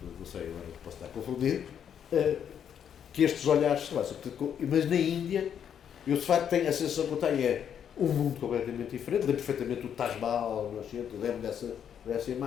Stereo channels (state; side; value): quieter; right; 8.6 dB